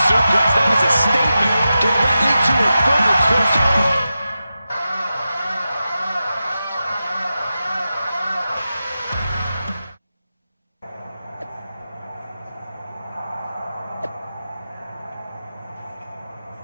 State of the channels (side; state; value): both; inverted; correlation -0.92